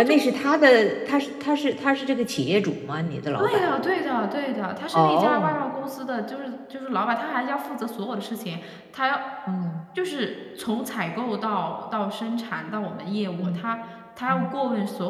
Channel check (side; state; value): both; identical; correlation 1.00